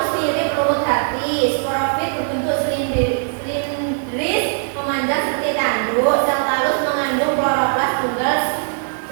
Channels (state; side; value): silent; left; 57 dB below the other